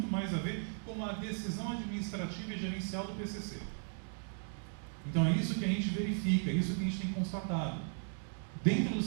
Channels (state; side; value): silent; left; 53 dB below the other